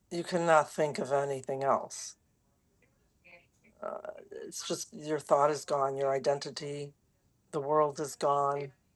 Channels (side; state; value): both; identical; correlation 1.00